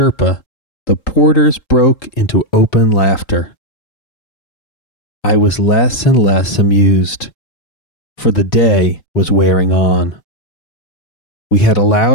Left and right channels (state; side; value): late; right; 3.8 ms